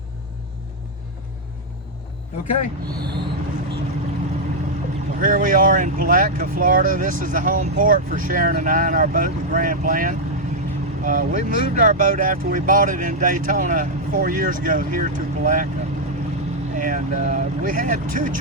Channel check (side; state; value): both; normal; correlation -0.03